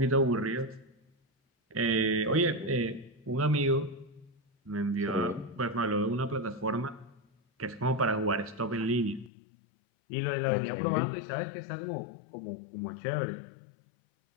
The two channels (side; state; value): right; drops out; at 9.3 s